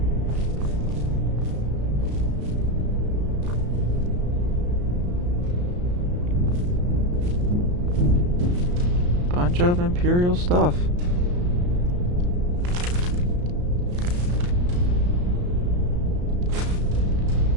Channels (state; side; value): late; left; 34 ms